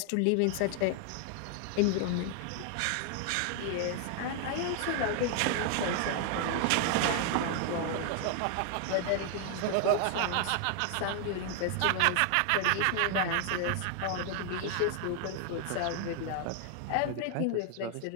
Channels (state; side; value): different; both; correlation 0.00